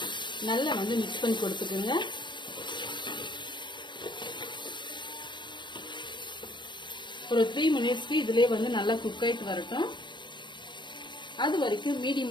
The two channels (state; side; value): late; right; 0.22 ms